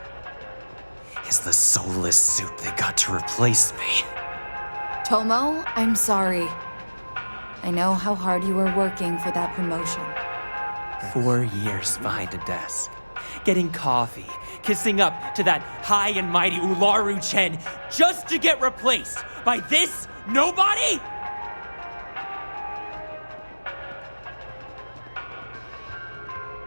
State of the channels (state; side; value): inverted; both; correlation -1.00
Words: is the soulless suit they got to replace me. Tomo, I'm sorry. I know how hard you were working for that promotion. 4 years behind a desk, getting coffee, kissing up to that high and mighty Ularu Chen just to get replaced by this nobody?